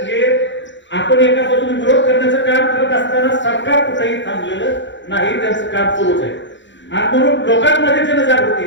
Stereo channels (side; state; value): right; late; 0.54 ms